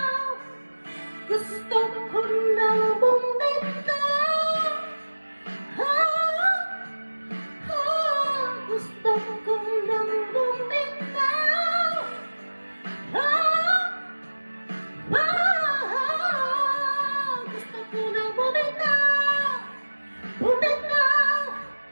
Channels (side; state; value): both; inverted; correlation -1.00